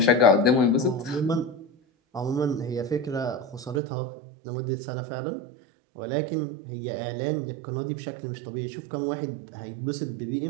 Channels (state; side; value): drops out; left; at 3.8 s